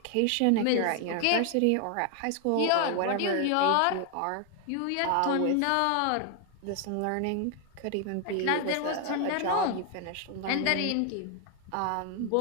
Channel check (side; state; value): both; different; correlation 0.00